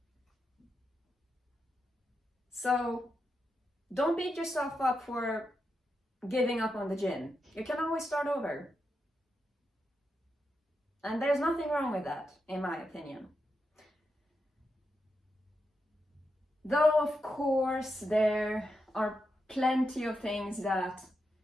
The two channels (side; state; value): both; normal; correlation 0.86